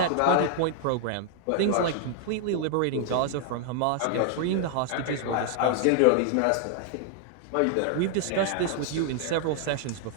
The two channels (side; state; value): both; different; correlation 0.00